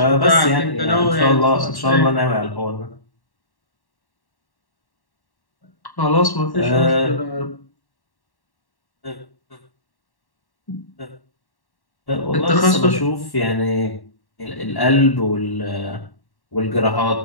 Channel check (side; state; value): right; late; 1.1 ms